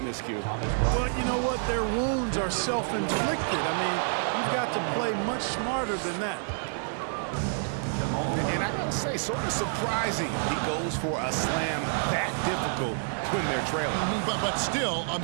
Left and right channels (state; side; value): silent; left; digital silence